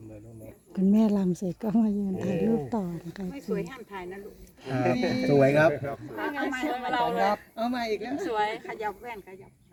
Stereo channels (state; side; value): identical; both; correlation 1.00